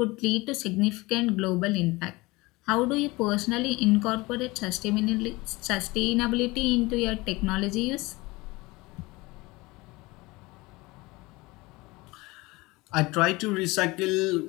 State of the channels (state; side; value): quieter; right; 22.4 dB